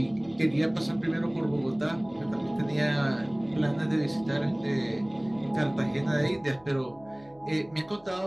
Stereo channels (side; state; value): left; noise; hum, 28 dB below the sound